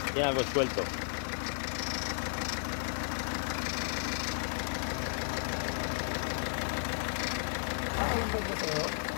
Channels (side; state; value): right; silent; 55 dB below the other